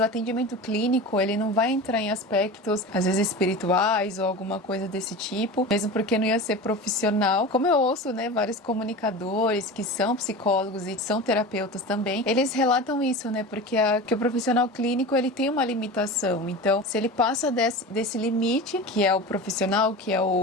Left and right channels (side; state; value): both; normal; correlation 0.30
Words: atendimento clínico, ele não vai entrar em aspectos, às vezes espirituais ou alguma coisa desse tipo, mesmo porque não ia ser profissional. Como eu ouço, né, vários comunicadores que são psicólogos e são terapeutas também, eles relatam isso, né, porque que o profissional clínico, ele tem uma limitação. Então, se ele passa desse limite, que é o profissional, que é